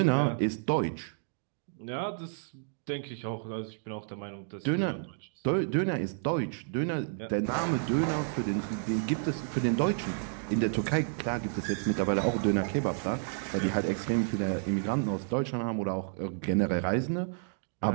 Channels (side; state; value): left; silent; digital silence